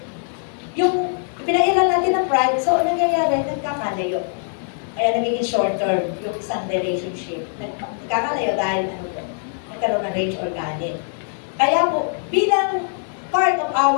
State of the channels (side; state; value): right; silent; digital silence